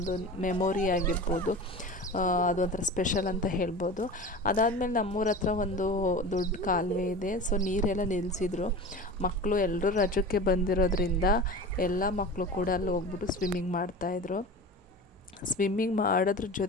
ಮೆಮೊರಿ ಆಗಿರ್ಬೋದು, ಅದೊಂಥರ ಸ್ಪೆಷಲ್ ಅಂತ ಹೇಳ್ಬೋದು. ಅದಾದಮೇಲೆ ನಮ್ಮೂರ ಹತ್ರ ಒಂದು ದೊಡ್ಡ ಕಾಲುವೆ ಇದೆ. ಸೊ ನೀರೆಲ್ಲ ನಿಲ್ಲಿಸಿದ್ರು. ಮಕ್ಕಳು ಎಲ್ಲರೂ ರಜಕ್ಕೆ ಬಂದಿರೋದ್ರಿಂದ ಎಲ್ಲ ಮಕ್ಕಳು ಕೂಡ ಅಲ್ಲಿ ಹೋಗ್ಬಿಟ್ಟು ಸ್ವಿಮ್ಮಿಂಗ್ ಮಾಡ್ತಾಯಿದ್ರು. ಸ್ವಿಮ್ಮಿಂಗ್ ಮಾಡೋದ್ರ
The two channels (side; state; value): both; normal; correlation 0.33